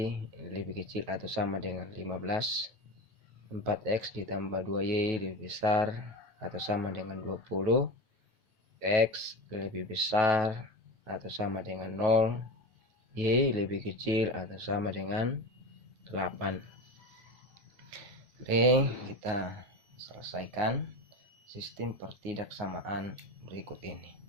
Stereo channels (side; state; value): left; late; 9.3 ms